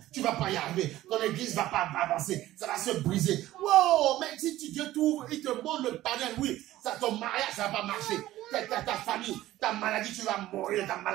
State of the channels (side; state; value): left; quieter; 15.2 dB